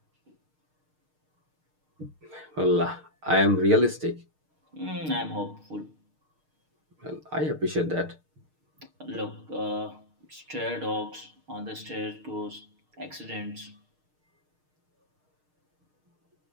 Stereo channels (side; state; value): left; late; 6.5 ms